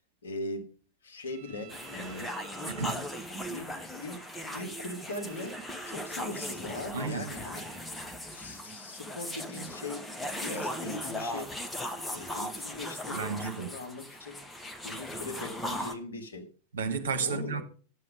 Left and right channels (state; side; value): normal; both; correlation 0.08